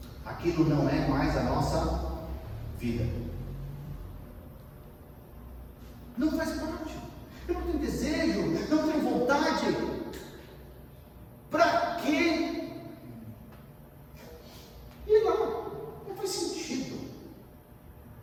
Aquilo não é mais a nossa vida. Não faz parte. Eu não tenho desejo, não tenho vontade. Para quê? E lá, não faz sentido.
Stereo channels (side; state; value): both; identical; correlation 1.00